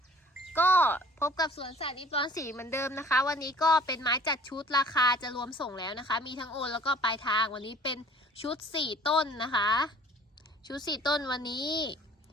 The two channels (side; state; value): both; normal; correlation 0.51